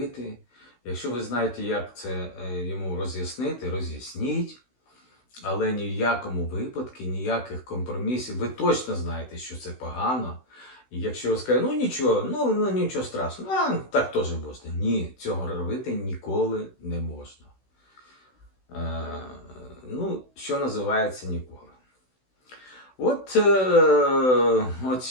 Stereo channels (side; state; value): right; late; 16 ms